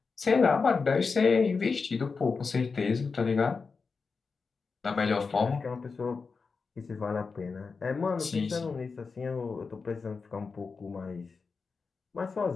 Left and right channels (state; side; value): quieter; right; 4.8 dB